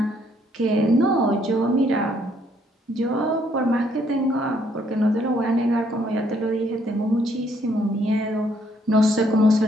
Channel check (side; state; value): both; normal; correlation 0.68